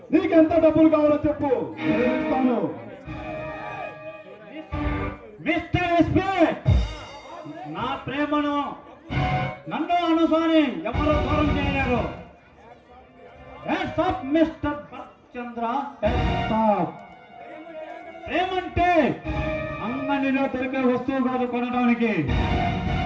నీకెంత డబ్బులు కావాలో చెప్పు, నేను ఇస్తాను. మిస్టర్ ఎస్పీ, నా ప్రేమను నన్ను అనుసాని ఎవరు దూరం చేయలేరు. మిస్టర్ చంద్ర, ప్రేమంటే అంగడిలో దొరికే వస్తువు కాదు కొనడానికి.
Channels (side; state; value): both; identical; correlation 1.00